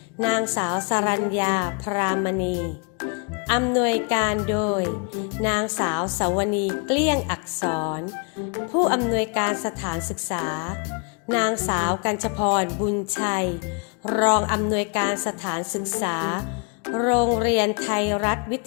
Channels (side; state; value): right; quieter; 35.1 dB